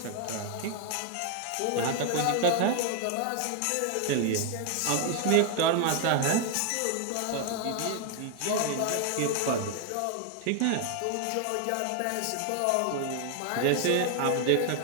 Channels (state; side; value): different; both; correlation 0.00